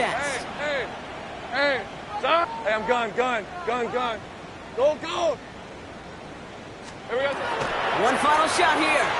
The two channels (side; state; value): both; identical; correlation 1.00